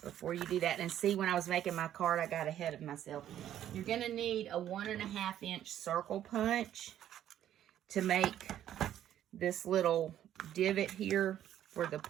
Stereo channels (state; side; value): quieter; left; 11.3 dB